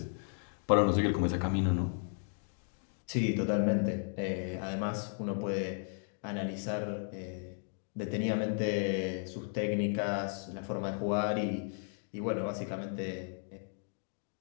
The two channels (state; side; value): silent; right; 55 dB below the other